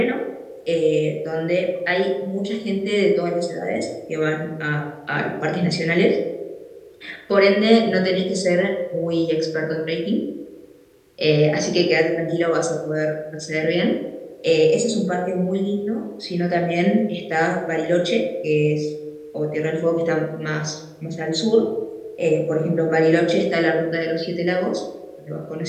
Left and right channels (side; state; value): both; identical; correlation 1.00